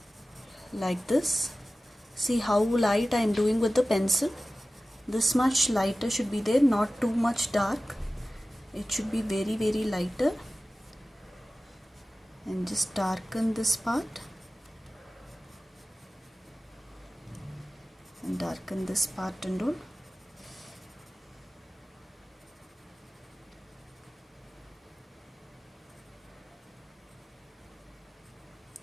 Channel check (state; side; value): normal; both; correlation 0.96